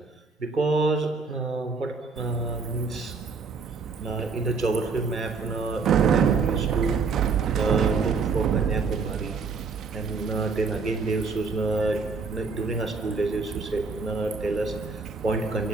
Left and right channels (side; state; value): left; quieter; 4.7 dB